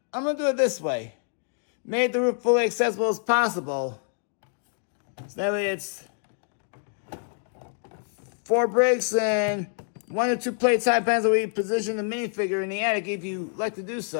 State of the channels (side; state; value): right; silent; 60 dB below the other